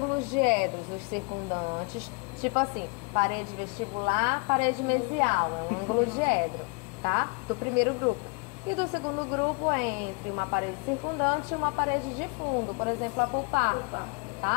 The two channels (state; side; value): quieter; right; 32.4 dB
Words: diedros, os circundantes, tipo assim, parede vestibular, parede mesial, é um ângulo diedro, tá? Do primeiro grupo. E do segundo grupo é entre uma parede circundante e uma parede de fundo, por exemplo, a pulpar,